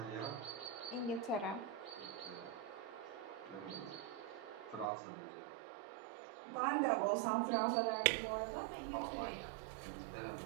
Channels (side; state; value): left; drops out; at 4.9 s